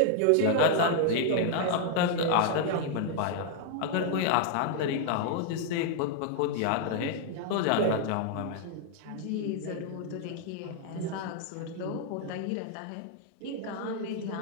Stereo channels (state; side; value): different; both; correlation 0.00